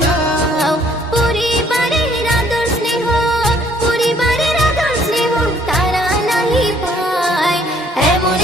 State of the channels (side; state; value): both; normal; correlation 0.62